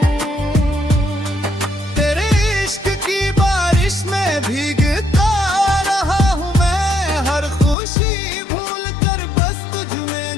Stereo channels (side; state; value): right; drops out; at 7.8 s